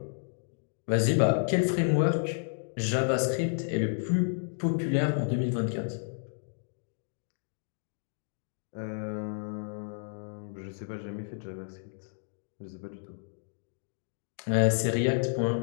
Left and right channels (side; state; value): right; silent; digital silence